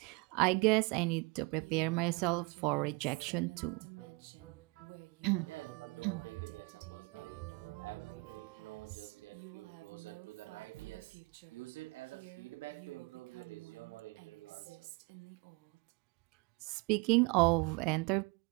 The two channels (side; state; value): left; quieter; 27.8 dB